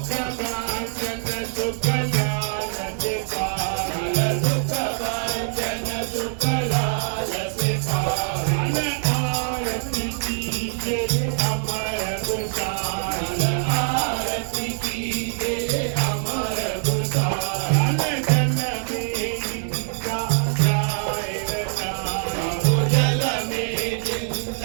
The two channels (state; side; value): silent; left; digital silence